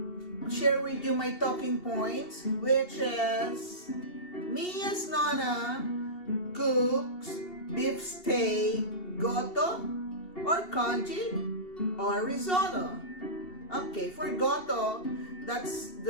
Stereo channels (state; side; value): late; right; 2.8 ms